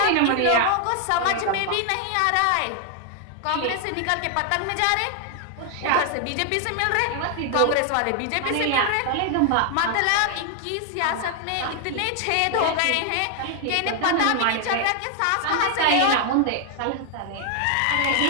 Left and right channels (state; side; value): different; both; correlation 0.00